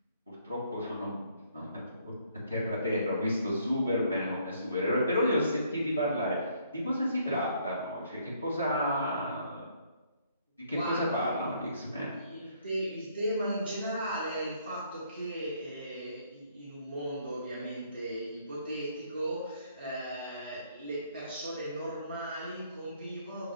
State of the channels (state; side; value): inverted; both; correlation -0.66